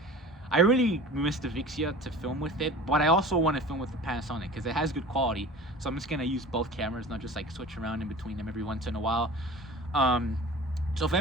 I really miss the Vixia to film with it, but I also want to film with the Panasonic because it has good quality. So I'm just going to use both cameras, not just like switch around in between them every once in a while. So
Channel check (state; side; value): normal; both; correlation 0.39